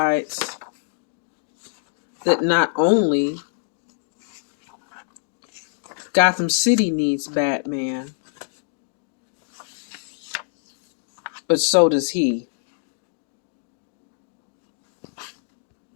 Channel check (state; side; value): silent; right; digital silence